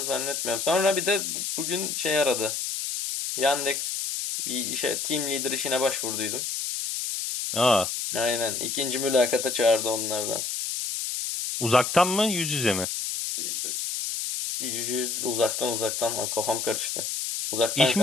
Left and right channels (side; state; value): left; noise; hiss, 3 dB below the sound